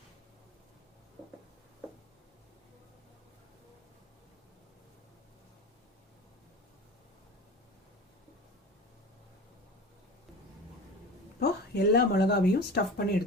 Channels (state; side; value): normal; both; correlation 0.33